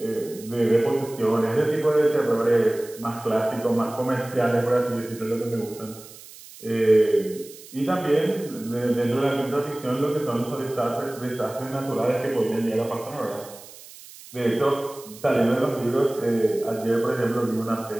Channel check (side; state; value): right; noise; hiss, 18 dB below the sound